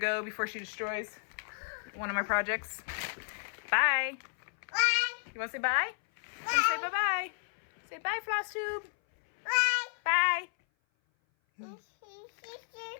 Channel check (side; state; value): right; silent; 56 dB below the other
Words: before she destroys one of my projects. Bye. Bye. You want to say bye? Say bye-bye. Say bye, Flosstube. Bye. Bye.